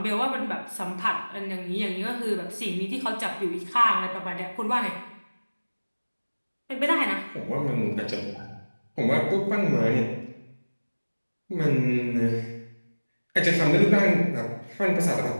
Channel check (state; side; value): inverted; both; correlation -1.00